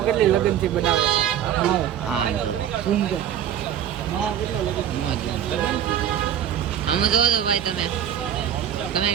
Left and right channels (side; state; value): left; quieter; 9.8 dB